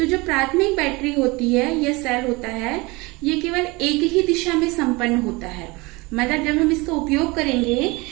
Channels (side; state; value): left; quieter; 24.4 dB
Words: जो प्राथमिक बैटरी होती है या सेल होता है, ये केवल एक ही दिशा में संपन्न होता है। मतलब जब हम इसका उपयोग करेंगे